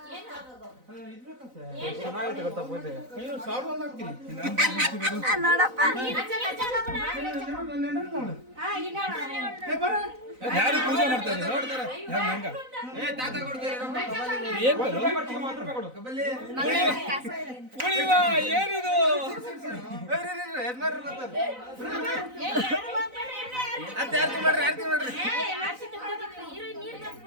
ನೋಡಪ್ಪ ಯಾರು ಪೂಜೆ ಮಾಡ್ತಾರೆ ನೋಡ್ತಾರೆ ಏನಿದು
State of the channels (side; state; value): left; late; 4.0 ms